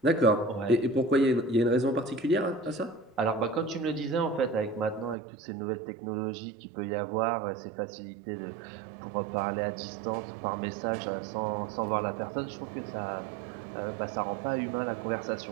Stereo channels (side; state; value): left; drops out; at 5.2 s